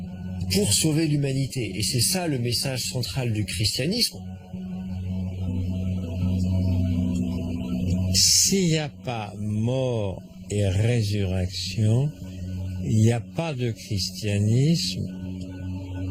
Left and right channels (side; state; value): both; identical; correlation 1.00